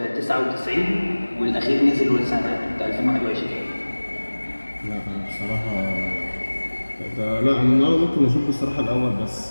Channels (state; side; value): inverted; both; correlation -1.00